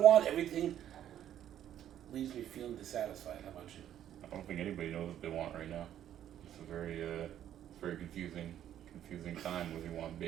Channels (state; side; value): quieter; left; 10.9 dB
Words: Everything leaves me feeling dissatisfied. How about you? I don't think anybody knows what they want right now. It's a very confusing time, whether you want